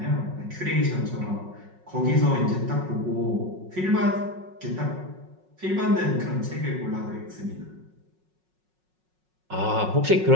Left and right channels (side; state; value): left; late; 5.4 ms